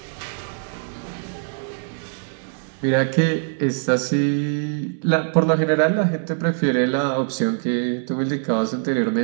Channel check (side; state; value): left; silent; 64 dB below the other